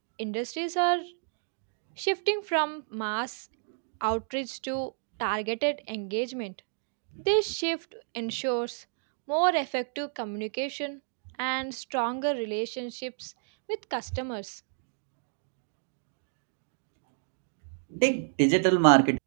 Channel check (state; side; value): silent; left; digital silence